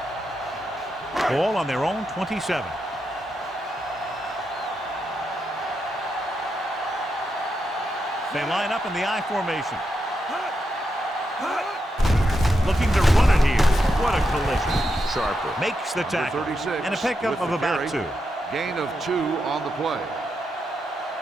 Ball on their own 27. They line up in the I formation. Looking to run it here. What a collision. Sharper makes the tackle. And a pickup of about 2. Gain of 2 on the play.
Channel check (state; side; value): normal; both; correlation 0.85